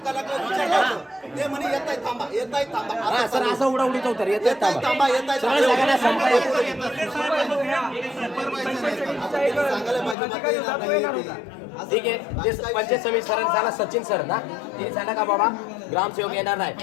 कलाकार विचारलं होतं. ते म्हणे येताय थांबा, येताय थांबा, हा सर असं उडीत होतं येत येताय थांबा, येताय सगळ्या सगळ्यांना संप थांबा. सांगायला पाहिजे मग ते येणार नाही ते. असं ठीक आहे ते पंचायत समिती सरांनी सांगा सचिन सर ना ते सांगा का बाबा ग्रामसेवक येणार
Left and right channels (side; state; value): right; drops out; at 10.2 s